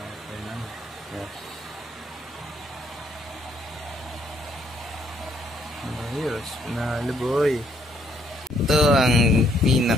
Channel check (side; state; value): both; normal; correlation 0.68